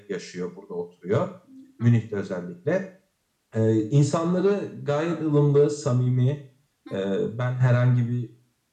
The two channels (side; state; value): both; identical; correlation 1.00